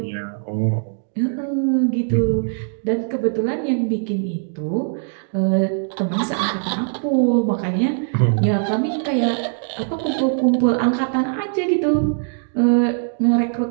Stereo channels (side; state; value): left; silent; digital silence